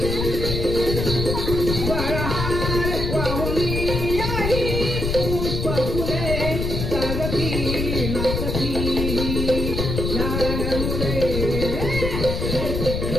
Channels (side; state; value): left; noise; rumble, 2 dB below the sound